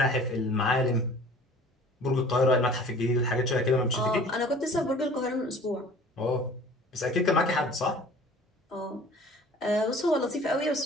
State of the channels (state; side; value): normal; both; correlation 0.47